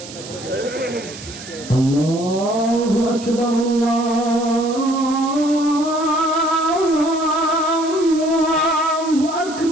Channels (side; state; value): right; noise; hiss, 14 dB below the sound